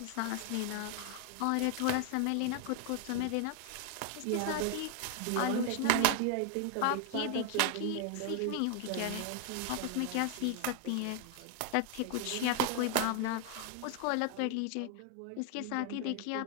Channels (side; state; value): both; different; correlation 0.00